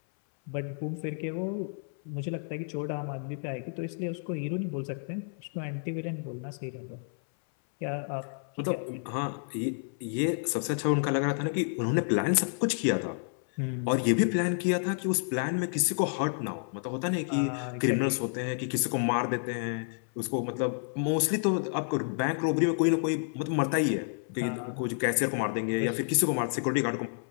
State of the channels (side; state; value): right; silent; 58 dB below the other